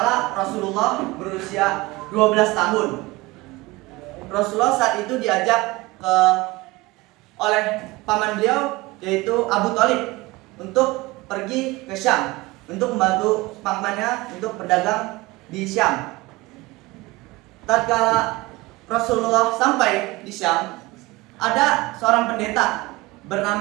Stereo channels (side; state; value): left; quieter; 21.3 dB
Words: Rasulullah berusia 12 tahun, Rasulullah saat itu diajak oleh paman beliau, yaitu Abu Thalib, untuk pergi ke Syam untuk membantu pamannya untuk berdagang di Syam. Tatkala Rasulullah sampai di Syam, ada seorang pendeta